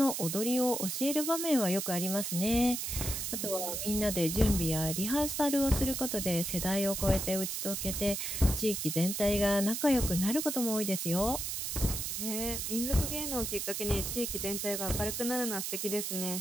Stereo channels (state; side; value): noise; right; hiss, 3 dB below the sound